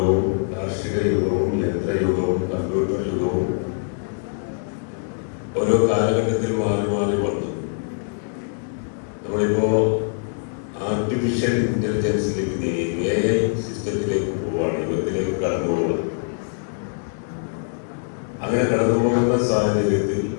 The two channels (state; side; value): silent; right; digital silence